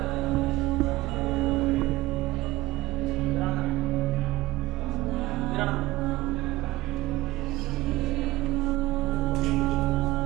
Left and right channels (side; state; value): left; quieter; 18.3 dB